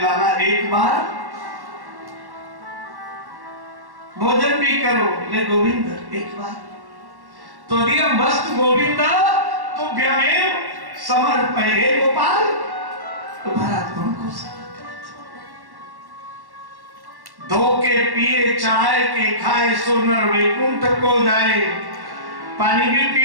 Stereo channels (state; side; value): late; left; 1.1 ms